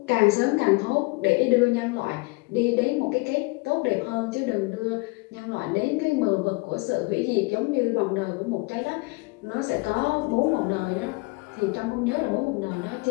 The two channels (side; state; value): right; quieter; 26.7 dB